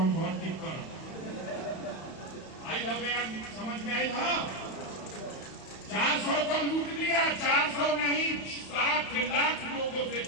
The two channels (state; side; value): late; right; 31 ms